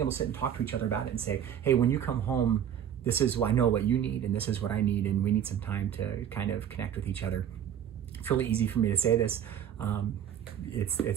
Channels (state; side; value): quieter; left; 9.5 dB